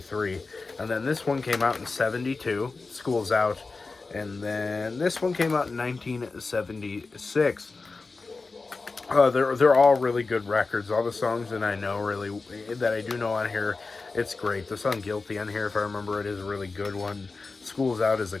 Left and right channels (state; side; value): quieter; right; 3.9 dB